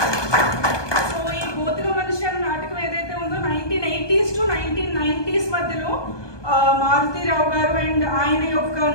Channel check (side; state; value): right; late; 1.2 ms